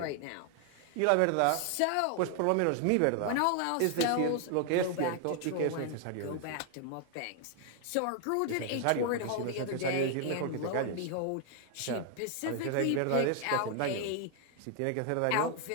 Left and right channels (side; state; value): both; different; correlation 0.00